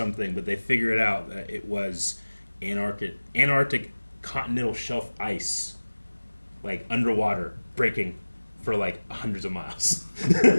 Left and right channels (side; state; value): both; inverted; correlation -1.00